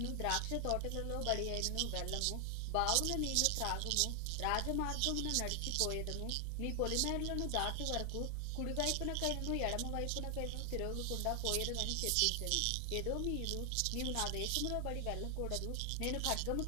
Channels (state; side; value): different; both; correlation 0.00